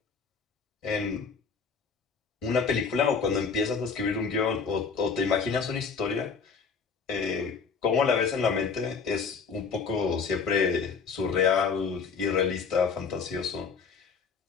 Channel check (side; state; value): right; quieter; 5.6 dB